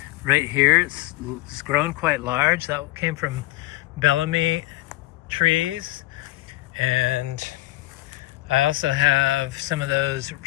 Right here, it's grown quite large. That came from Bellamy trees. And I also have some of those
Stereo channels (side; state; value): right; quieter; 18.5 dB